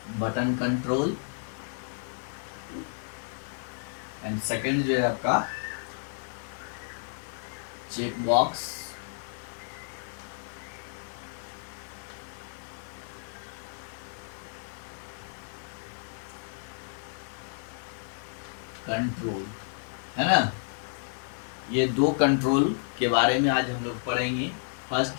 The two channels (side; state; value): right; silent; digital silence